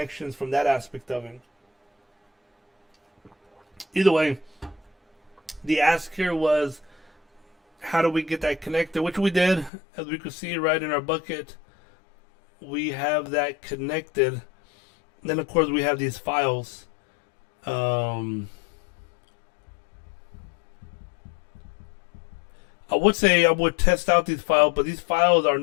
from that aspect of it. Either way, the ask here was, how do we get that connected? Which we did, as we could see right in our bucket. We have that connected. Then, of course, we have these files. I would say I would test out these files, but these files are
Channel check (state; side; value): drops out; right; at 9.7 s